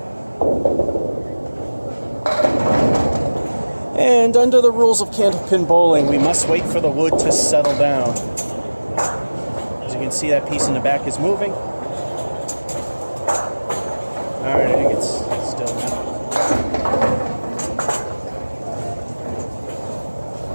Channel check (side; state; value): both; inverted; correlation -1.00